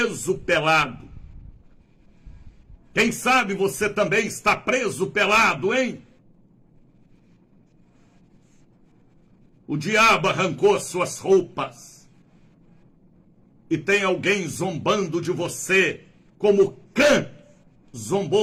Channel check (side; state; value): both; identical; correlation 1.00